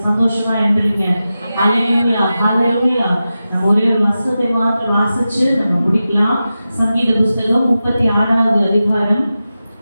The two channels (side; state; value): both; inverted; correlation -0.92